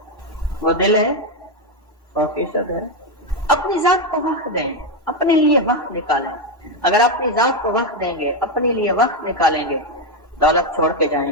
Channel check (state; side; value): normal; both; correlation 0.06